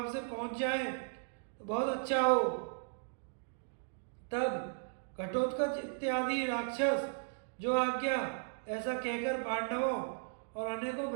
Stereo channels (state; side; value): silent; left; digital silence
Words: से पहुंच जाएं तो बहुत अच्छा हो। तब घटोत्कच इत्यादि राक्षस जो आज्ञा ऐसा कहकर पांडवों और अनेकों